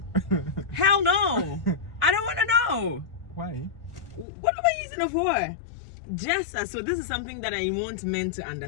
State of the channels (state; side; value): drops out; right; at 4.2 s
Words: Hell no, I don't want to know. Why? What am I using it for? So this is something that I want men to